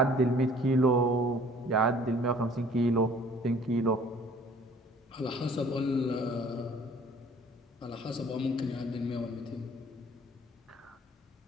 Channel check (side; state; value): both; normal; correlation 0.53